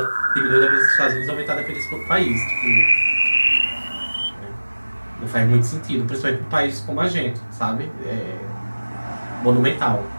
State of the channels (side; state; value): both; inverted; correlation -1.00